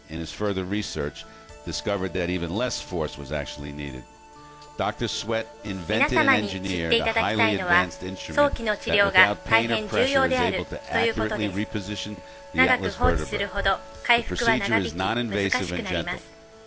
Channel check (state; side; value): identical; both; correlation 1.00